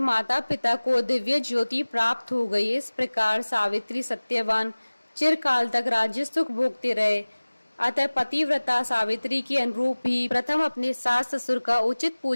माता पिता को दिव्य ज्योति प्राप्त हो गई। इस प्रकार सावित्री सत्यवान चिरकाल तक राज्य सुख भोगते रहे। अतः पतिव्रता सावित्री के अनुरूप ही प्रथम अपने सास ससुर का उचित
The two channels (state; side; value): inverted; both; correlation -1.00